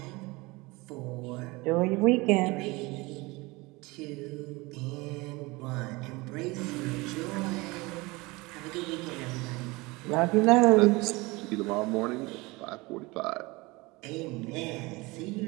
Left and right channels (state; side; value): quieter; left; 23.5 dB